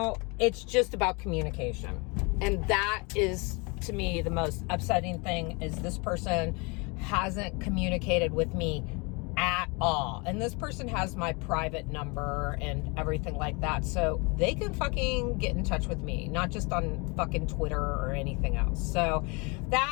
it's just about communication. And that is, to me, the most upsetting thing is this person hasn't communicated with me at all. And this person has my private number and everything like that. So they can fucking get in touch with me, not just on fucking Twitter or anything else. So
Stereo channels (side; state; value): right; quieter; 29.5 dB